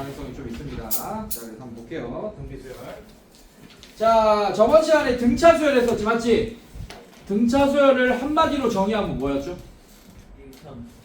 좀 있습니다. 자, 그래서 한번 볼게요. 등비수열. 자, 저번 시간에 등차수열 했었지, 맞지? 등차수열을 한마디로 정의하면 뭐였죠?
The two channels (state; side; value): identical; both; correlation 1.00